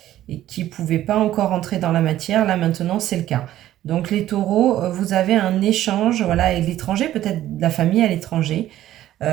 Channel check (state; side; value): quieter; left; 13.3 dB